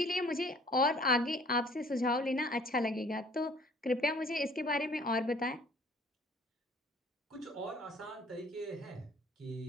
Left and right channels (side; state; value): both; normal; correlation 0.54